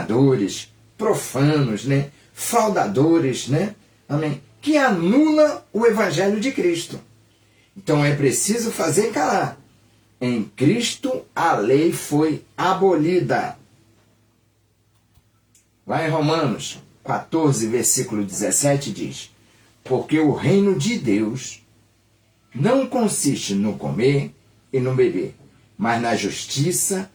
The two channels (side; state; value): both; identical; correlation 1.00